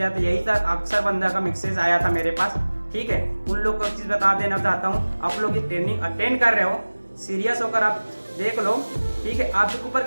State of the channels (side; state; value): both; inverted; correlation -1.00